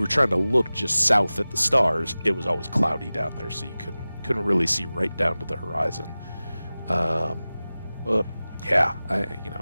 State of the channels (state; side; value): inverted; both; correlation -0.97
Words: were trying to look just south at the stars, it was always cloudy down there, so you couldn't really see right down to the horizon. But yeah,